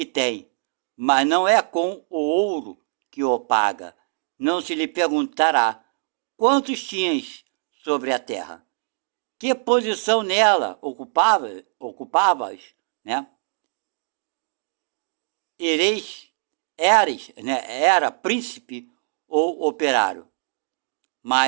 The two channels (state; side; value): silent; left; digital silence